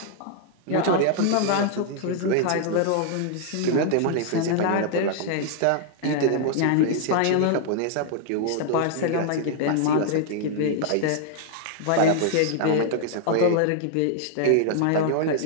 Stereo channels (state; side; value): different; both; correlation 0.00